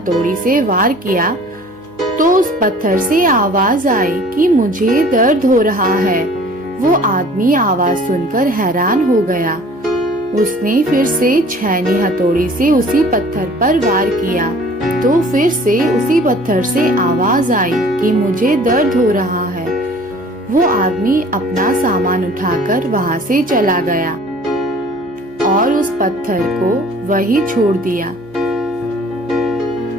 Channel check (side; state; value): right; noise; hum, 28 dB below the sound